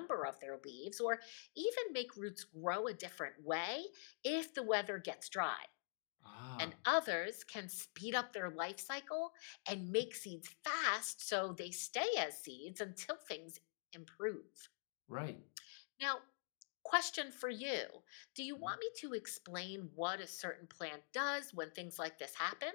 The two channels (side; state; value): right; silent; digital silence